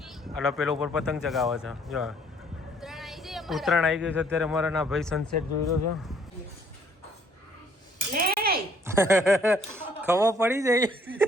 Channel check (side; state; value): both; normal; correlation 0.63